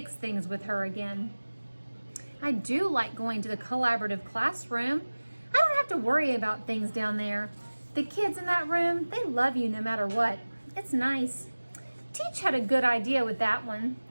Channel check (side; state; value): both; inverted; correlation -1.00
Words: things with her again. I do like going to the collaborative classroom. I don't have to worry about things down there. The kids in that room, they love you no matter what. It's nice. Teach had a good idea with that one.